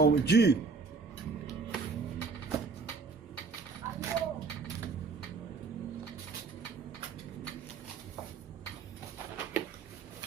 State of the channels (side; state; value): left; quieter; 4.7 dB